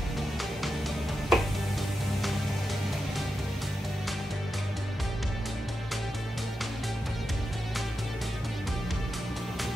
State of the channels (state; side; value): normal; both; correlation 0.89